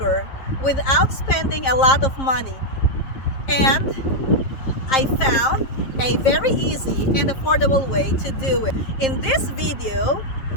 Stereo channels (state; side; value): late; right; 7.6 ms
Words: without spending a lot of money, and I found a very easy and affordable way to do it. In this video,